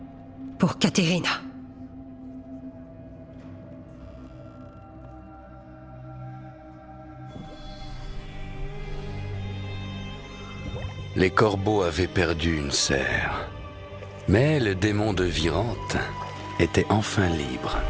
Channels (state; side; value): identical; both; correlation 1.00